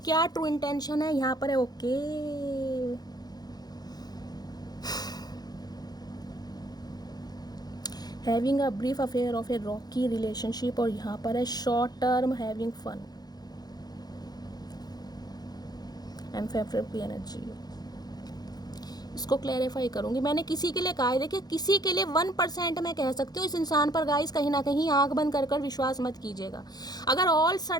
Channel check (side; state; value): right; late; 0.19 ms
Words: ट्रू इंटेंशन है। यहाँ पर है okay, having a brief affair of a rocky relationship, और यहाँ पर है short term having fun and favourite energy. इसको क्लैरिफाई करूंगी। मैंने किसी के लिए कहा है, देखिए किसी के लिए 1% मैं कह सकती हूँ इस इंसान पर गाइस कहीं ना कहीं आंख बंद कर विश्वास मत कीजिएगा। अगर ऑल